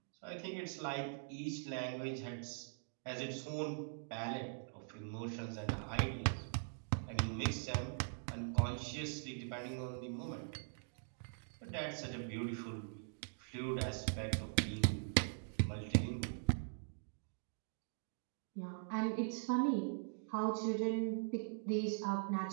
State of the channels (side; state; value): left; silent; digital silence